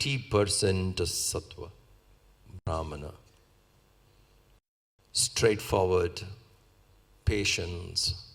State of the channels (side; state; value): both; identical; correlation 1.00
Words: sattva, brahmana. Straightforward, patience,